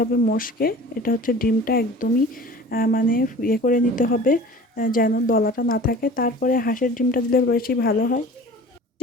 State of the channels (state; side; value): normal; both; correlation 0.42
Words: মশকে এটা হচ্ছে ডিমটা একদমই মানে ইয়ে করে নিতে হবে, যেন দলাটা না থাকে। তারপরে হাঁসের ডিমটা দিলে বেশি ভালো হয়,